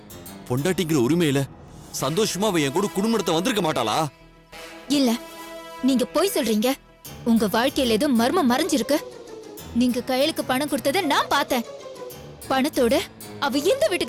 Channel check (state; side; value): identical; both; correlation 1.00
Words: பொண்டாட்டிங்கிற உரிமையில சந்தோஷமா அவ என் கூட குடும்பத்தை வந்திருக்க மாட்டாளா? இல்ல, நீங்க போய் சொல்றீங்க. உங்க வாழ்க்கையில ஏதோ மர்மம் மறைஞ்சிருக்கு. நீங்க கையிலுக்கு பணம் கொடுத்ததை நான் பார்த்தேன். பணத்தோட அவ இந்த